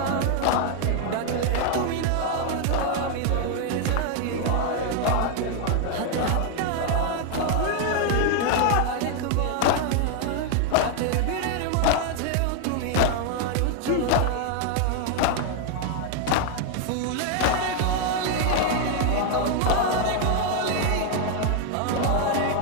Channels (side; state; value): both; different; correlation 0.00